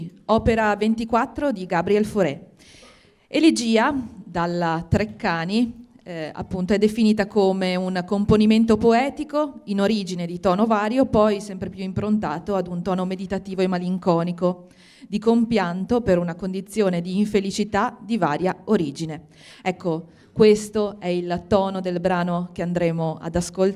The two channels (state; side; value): identical; both; correlation 1.00